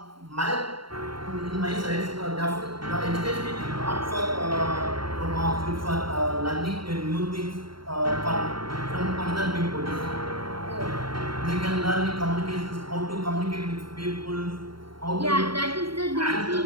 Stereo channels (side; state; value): left; late; 0.73 ms